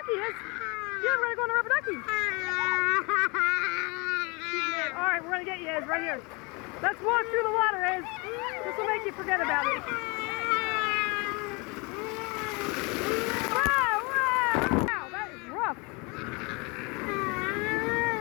Iz. Yeah, we're going to go on the rubber ducky. Alright, we're going to get you, Iz, right here. Let's walk through the water, Iz. This will make you forget about it. Wow, wow, wow, that is rough.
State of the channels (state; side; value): quieter; right; 28.8 dB